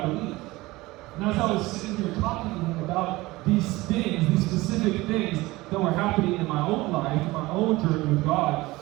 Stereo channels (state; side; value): quieter; left; 20.0 dB